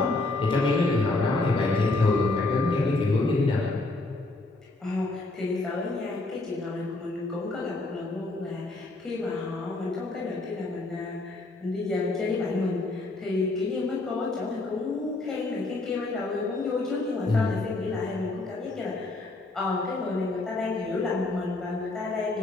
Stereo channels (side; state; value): right; quieter; 3.1 dB